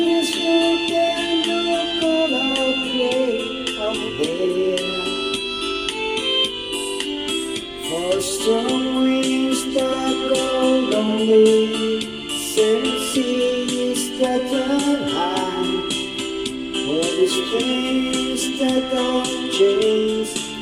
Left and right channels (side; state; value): both; identical; correlation 1.00